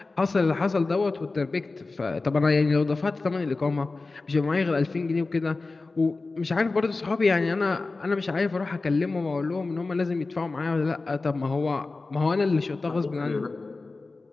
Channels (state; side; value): quieter; right; 3.6 dB